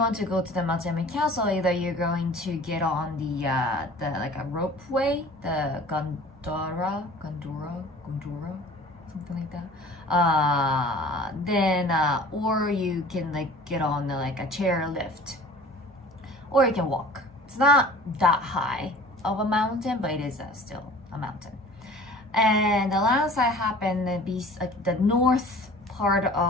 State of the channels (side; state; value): both; normal; correlation 0.45